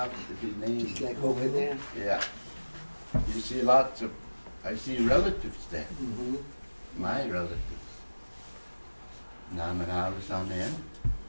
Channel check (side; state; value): both; inverted; correlation -1.00